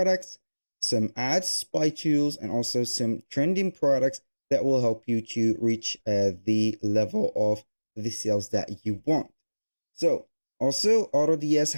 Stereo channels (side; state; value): both; inverted; correlation -1.00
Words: some ads, spy tools, and also some trending products that will help you to reach the level of the sales that you want. So also AutoDS